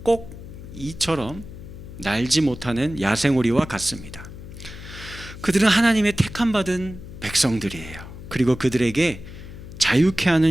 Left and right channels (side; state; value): left; noise; hum, 13 dB below the sound